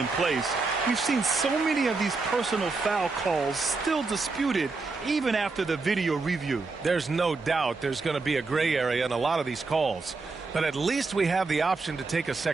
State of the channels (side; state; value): left; quieter; 4.0 dB